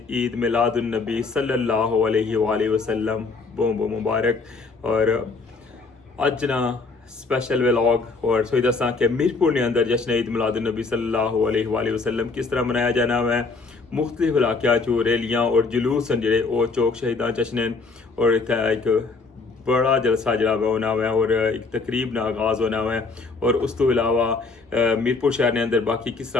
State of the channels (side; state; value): right; quieter; 4.1 dB